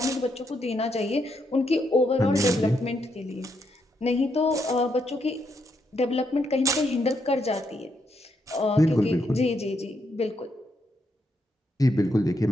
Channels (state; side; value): normal; both; correlation 0.78